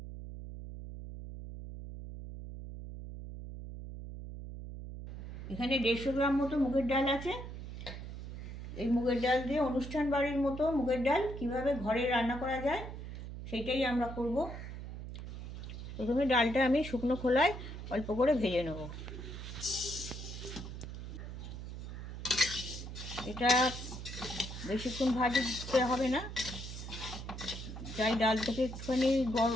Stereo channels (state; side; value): noise; right; hum, 9 dB below the sound